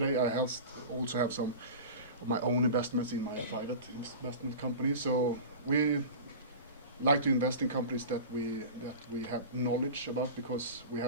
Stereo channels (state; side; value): inverted; both; correlation -0.33